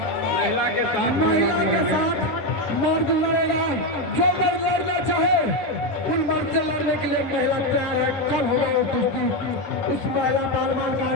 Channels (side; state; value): right; late; 10 ms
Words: महिला के साथ मर्द लड़ेगा। जो मर्द लड़ना चाहे उन मर्द से लड़ने के लिए महिला तैयार है। कल होगा वो कुश्ती। उस महिला पहलवान का